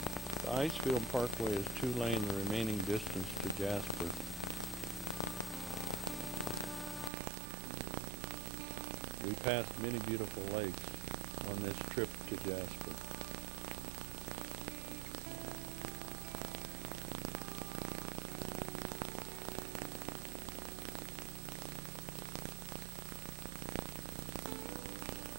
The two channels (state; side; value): drops out; left; at 7.1 s